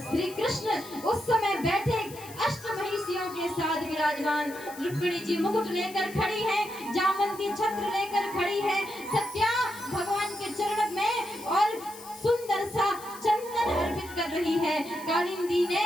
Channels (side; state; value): left; noise; hiss, 17 dB below the sound